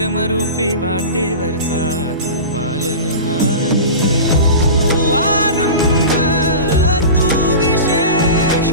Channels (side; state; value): both; inverted; correlation -0.31